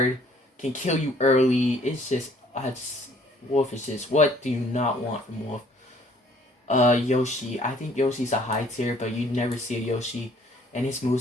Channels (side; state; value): both; normal; correlation 0.59